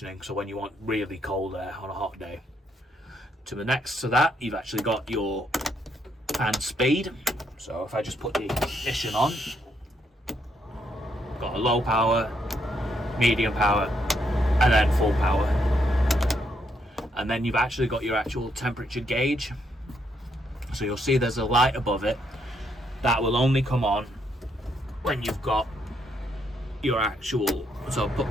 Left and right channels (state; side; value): normal; both; correlation 0.75